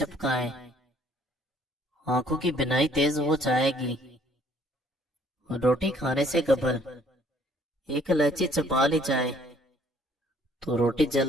आंखों की बिनाई तेज हो जाएगी। रोटी खाने से कबल एक इलायची चबा ली जाए तो रोटी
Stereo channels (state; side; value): normal; both; correlation 0.61